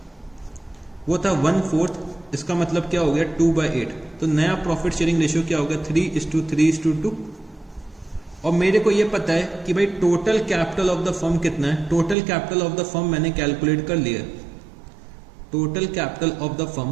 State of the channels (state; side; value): drops out; left; at 12.2 s